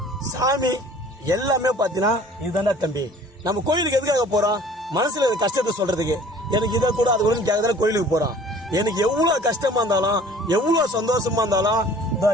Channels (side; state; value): both; normal; correlation 0.50